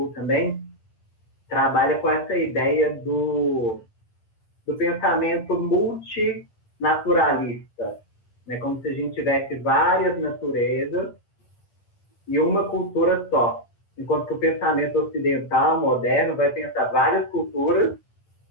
também, trabalha com essa ideia do pensamento multinaturalista, né? Como se a gente tivesse várias naturezas e uma cultura só. Enquanto que o pensamento ocidental, moderno, vai pensar várias culturas,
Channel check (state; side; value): late; right; 9.1 ms